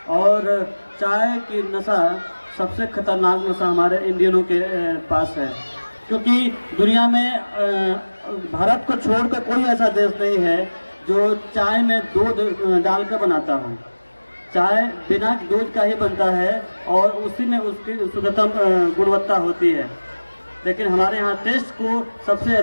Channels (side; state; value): both; inverted; correlation -1.00